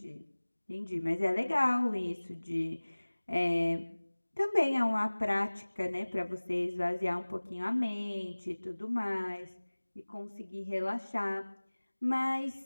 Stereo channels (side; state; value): both; inverted; correlation -1.00